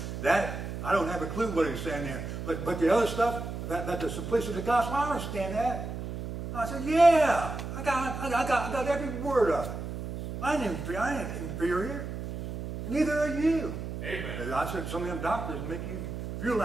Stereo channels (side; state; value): right; noise; hum, 7 dB below the sound